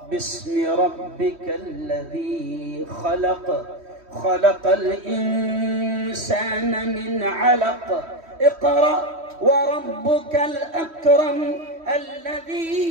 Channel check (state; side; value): late; left; 3.1 ms